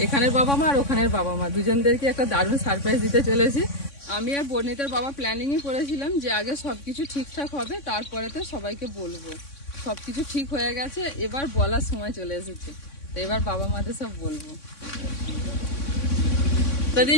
এখানের বাবা মা আর ওখানের বাবা মা দুজনদেরকে একটা দারুণ সারপ্রাইজ দিতে চলেছি। আমি আর বর্ণিতার বাবা প্ল্যানিংই করেছিলাম যে আগে সবকিছু ঠিকঠাক হবে, তারপরেতে সবাইকে বলবো। সবকিছু ঠিক হয়ে গেছে, এবার বলার সময় চলে এসেছে, তো এবার বাবা মাদের সব বলবো। দাদি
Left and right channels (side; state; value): right; late; 3.6 ms